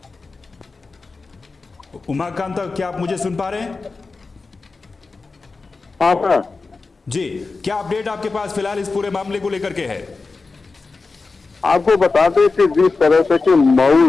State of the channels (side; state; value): right; quieter; 4.0 dB